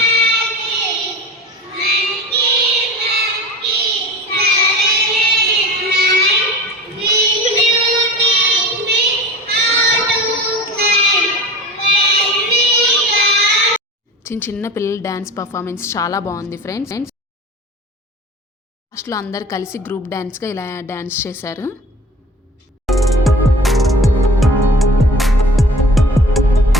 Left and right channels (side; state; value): both; normal; correlation 0.39